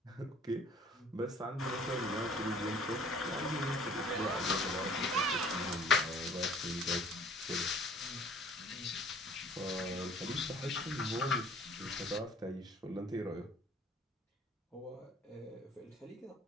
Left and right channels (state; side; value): normal; both; correlation 0.53